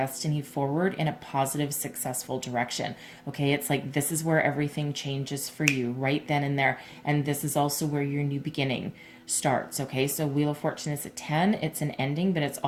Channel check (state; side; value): identical; both; correlation 1.00